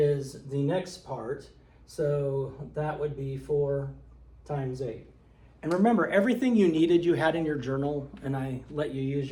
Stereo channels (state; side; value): identical; both; correlation 1.00